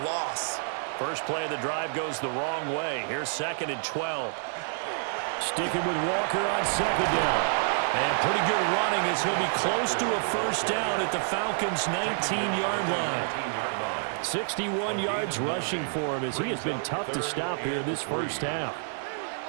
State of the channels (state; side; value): silent; left; digital silence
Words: loss. First play of the drive goes the wrong way. Here's 2nd and 12. Sticking with Walker on 2nd down. And pretty good running as he'll be close to a 1st down at the Falcons' 19-yard line. 61 yards rushing for him as he has been tough to stop here this first half.